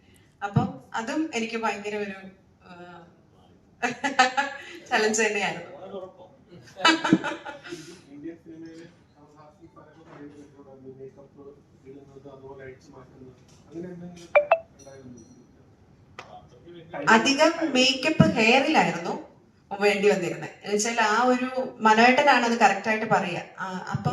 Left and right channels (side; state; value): both; identical; correlation 1.00